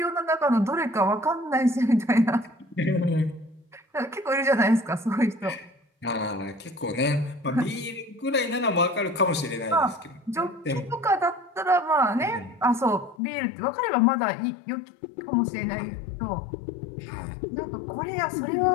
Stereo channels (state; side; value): drops out; right; at 13.2 s